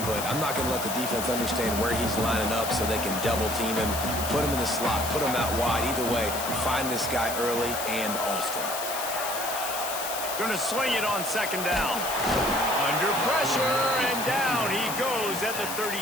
but I'm not going to let the defense understand where he's lining up so they can double team him, put him in the slot, put him out wide. Either way, find this guy early and often. Going to swing it on second down. Under pressure, and down he goes at the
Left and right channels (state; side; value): noise; left; hiss, 6 dB below the sound